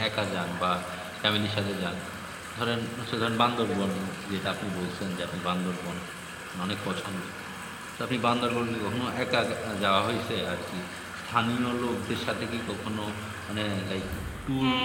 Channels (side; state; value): both; identical; correlation 1.00